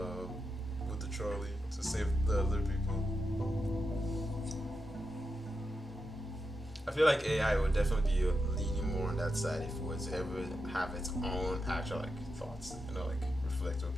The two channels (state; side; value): normal; both; correlation 0.87